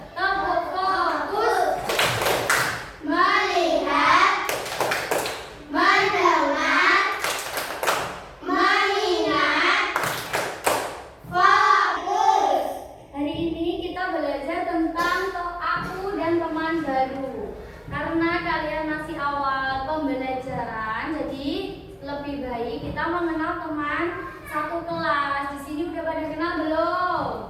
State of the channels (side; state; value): both; identical; correlation 1.00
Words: Tepuk fokus. Melihat, mendengar, mengingat, fokus. Hari ini kita belajar tentang aku dan teman baru. Karena kalian masih awal pembelajaran, jadi lebih baik kita mengenal teman satu kelas. Di sini udah pada kenal belum?